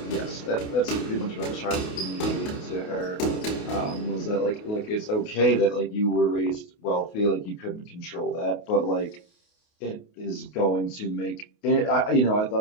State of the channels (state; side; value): late; right; 28 ms